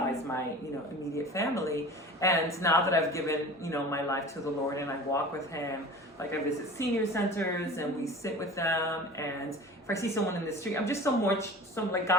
my, you know, immediate family. And now that I've given, you know, my life to the Lord and I walk with Him, like I visit senior centers and we sit with them, and if I see someone in the street, I'm just like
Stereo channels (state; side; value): normal; both; correlation 0.38